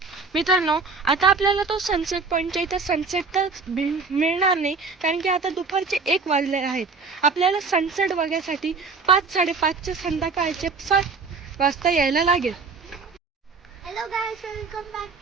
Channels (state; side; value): quieter; left; 4.5 dB